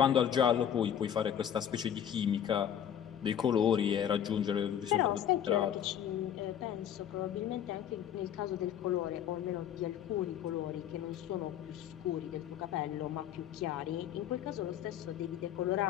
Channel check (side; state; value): right; quieter; 9.6 dB